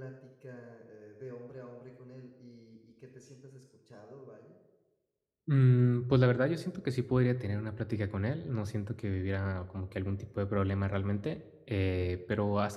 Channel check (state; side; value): identical; both; correlation 1.00